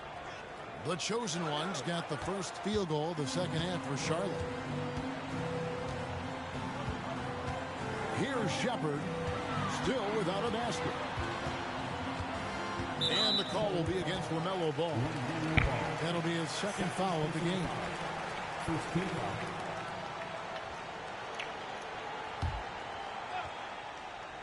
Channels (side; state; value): both; identical; correlation 1.00